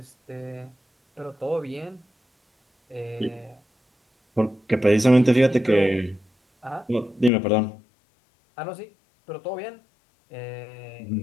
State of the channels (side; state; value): right; drops out; at 7.3 s